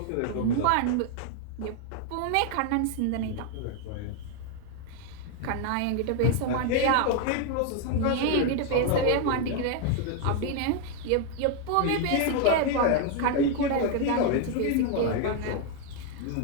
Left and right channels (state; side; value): different; both; correlation 0.00